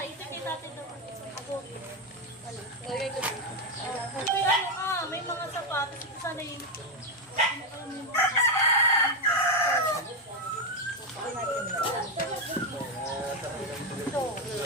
ito kita natin doon. Ako. May mga sapatos. Ito sana yung... Ito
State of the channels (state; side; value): normal; both; correlation 0.05